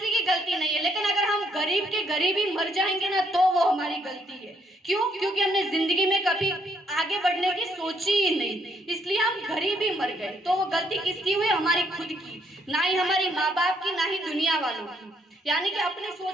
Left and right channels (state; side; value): normal; both; correlation 0.71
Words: की गलती नहीं है, लेकिन अगर हम गरीब के गरीब ही मर जाएंगे ना तो वो हमारी गलती है। क्यों? क्योंकि हमने जिंदगी में कभी आगे बढ़ने की सोची ही नहीं, इसलिए हम गरीब ही मर गए। तो वो गलती किसकी हुई? हमारी खुद की, ना ही हमारी माँ बाप की, ना ही दुनिया वालों की। यानी कि अपनी